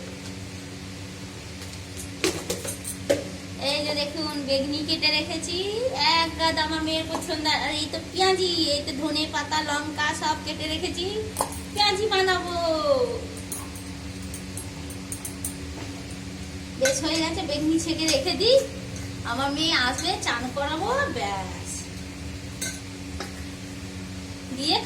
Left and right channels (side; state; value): both; identical; correlation 1.00